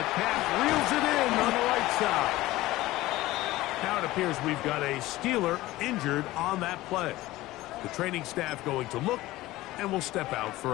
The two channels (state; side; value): quieter; right; 17.5 dB